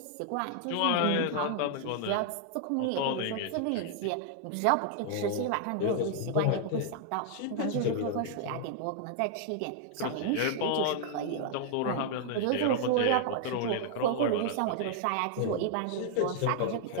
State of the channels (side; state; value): both; different; correlation -0.01